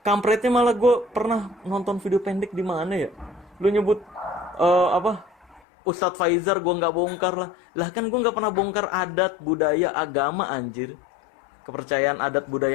kampretnya malah gue pernah nonton video pendek di mana ya? Lu nyebut apa? Ustadz Faizar gue nggak bongkar lah. Lah kan gue nggak pernah bongkar adat budaya agama anjir. Kepercayaan adat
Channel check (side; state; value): right; drops out; at 5.6 s